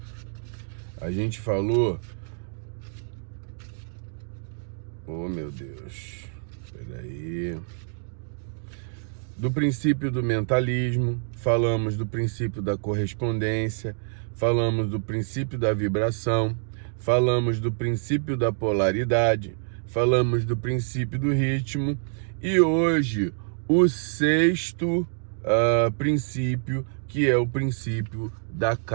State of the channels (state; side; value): silent; left; digital silence